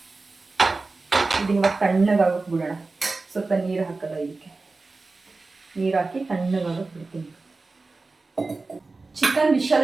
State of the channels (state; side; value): quieter; left; 3.7 dB